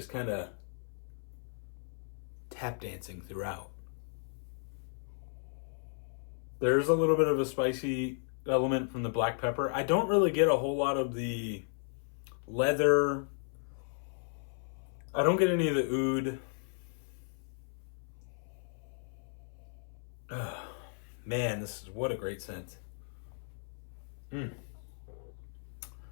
kind of tap dancing throughout. There's a little bit of a spicy element from the black pepper. I don't really get a whole lot of the leather. I don't get any of the oud. Oh, man, this is what a great scent.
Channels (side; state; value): right; silent; 54 dB below the other